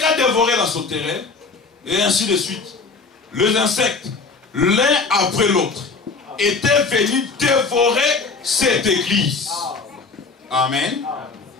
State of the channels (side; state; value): right; quieter; 4.4 dB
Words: dévoré la sauterelle, et ainsi de suite. Les insectes, l'un après l'autre, étaient venus dévorer cette église. Amen.